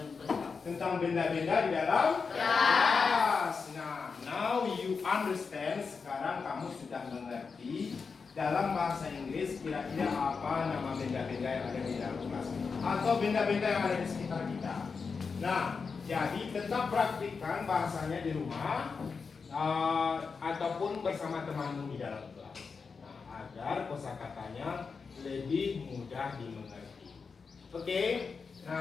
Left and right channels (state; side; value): quieter; right; 5.1 dB